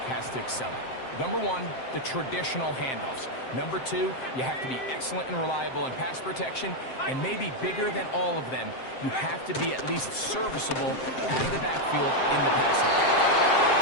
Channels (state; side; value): late; right; 7.7 ms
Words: has to excel at. Number 1, the traditional handoffs. Number 2, you have to be excellent and reliable in pass protection. And maybe bigger than all of them, you have to be at least serviceable out of the backfield in the passing game.